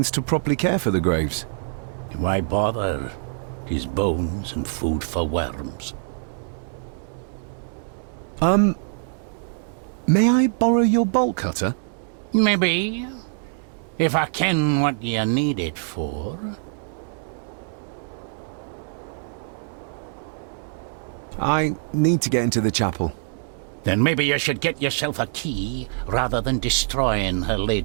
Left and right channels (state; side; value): silent; left; digital silence